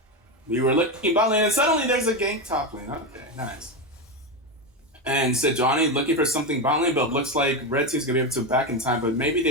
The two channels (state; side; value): normal; both; correlation 0.13